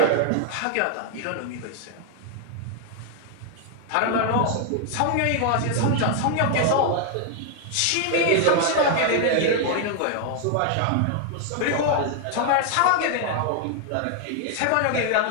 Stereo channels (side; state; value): both; different; correlation 0.00